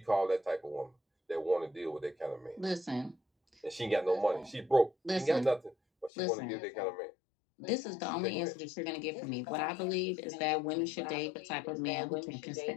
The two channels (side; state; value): right; drops out; at 6.1 s